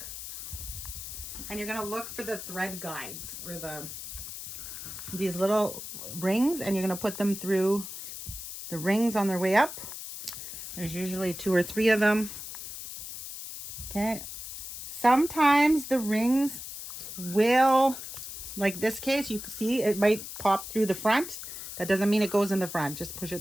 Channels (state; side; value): noise; left; hiss, 9 dB below the sound